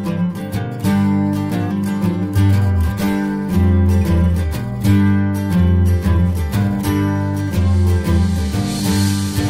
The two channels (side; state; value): both; identical; correlation 1.00